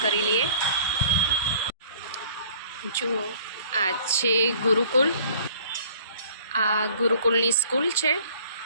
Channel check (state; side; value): inverted; both; correlation -0.53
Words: કરી લઈએ। જુઓ આ છે ગુરુકુળ, આ ગુરુકુળની સ્કૂલ છે